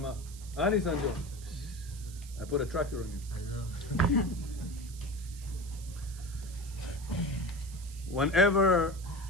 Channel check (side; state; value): right; noise; hiss, 17 dB below the sound